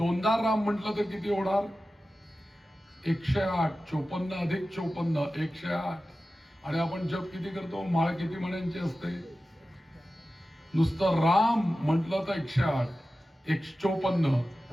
राम म्हटलं तर किती होणार, 108. 54 अधिक 54 108. आणि आपण जप किती करतो, माळ किती म्हणायची असते, नुसतं राम म्हटलं तर 108. 154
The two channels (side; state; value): both; normal; correlation 0.94